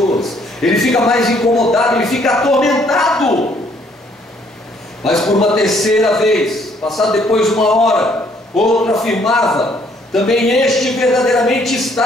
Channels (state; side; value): normal; both; correlation 0.65